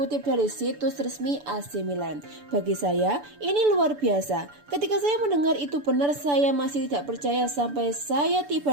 dari situs resmi AC Milan. Bagi saya, ini luar biasa. Ketika saya mendengar itu benar, saya masih tidak percaya sampai saya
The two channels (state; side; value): late; left; 6.9 ms